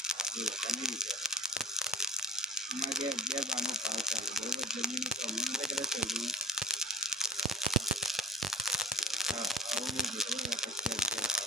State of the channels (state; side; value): normal; both; correlation 0.42